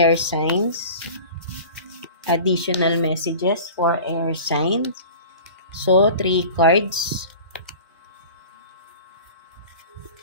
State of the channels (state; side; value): inverted; both; correlation -0.39